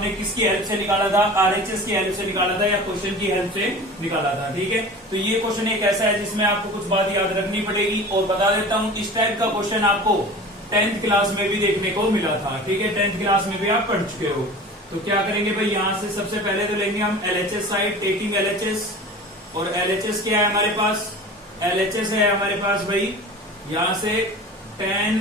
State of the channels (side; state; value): both; normal; correlation 0.37